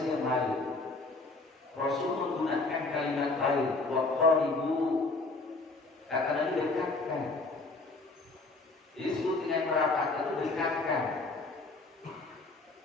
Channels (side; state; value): right; quieter; 3.4 dB